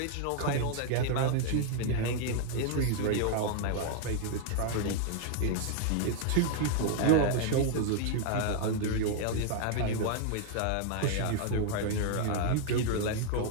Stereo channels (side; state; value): both; different; correlation 0.00